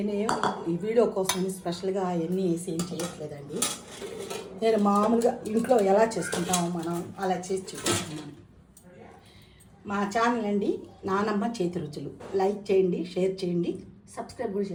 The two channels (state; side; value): identical; both; correlation 1.00